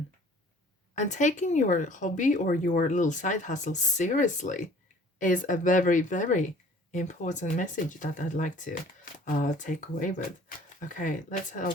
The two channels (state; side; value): normal; both; correlation 0.51